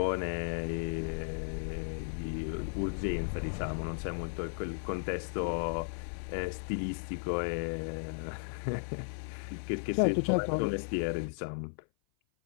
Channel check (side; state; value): right; silent; 54 dB below the other